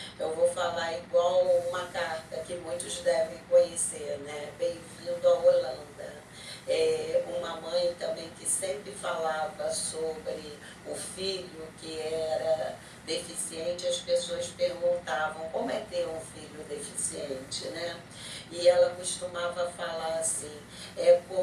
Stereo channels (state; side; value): identical; both; correlation 1.00